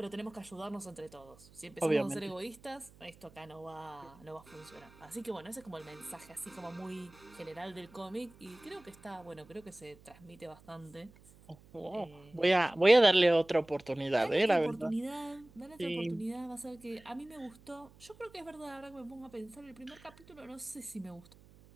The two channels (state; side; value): noise; right; hum, 24 dB below the sound